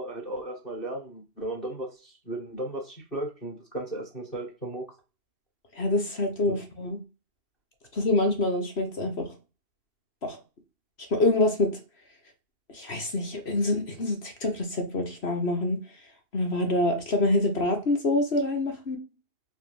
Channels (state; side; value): late; right; 3.0 ms